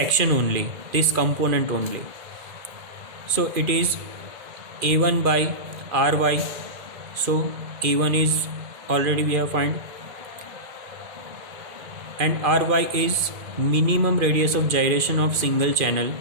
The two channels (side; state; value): left; late; 2.4 ms